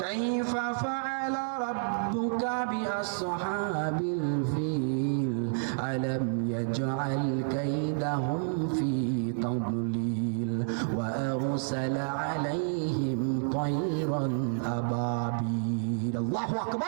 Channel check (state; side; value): silent; left; 58 dB below the other